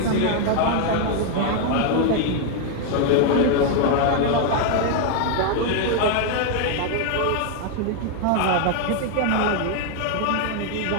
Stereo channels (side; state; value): both; different; correlation 0.00